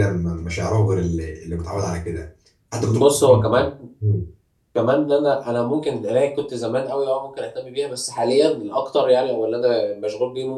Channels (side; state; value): both; identical; correlation 1.00